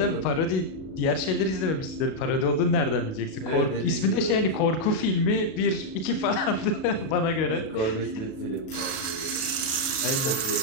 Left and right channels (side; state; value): right; late; 37 ms